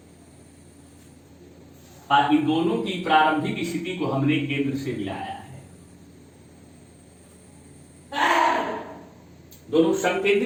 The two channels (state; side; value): identical; both; correlation 1.00